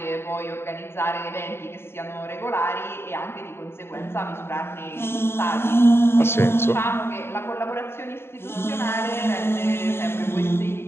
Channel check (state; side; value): late; right; 0.11 ms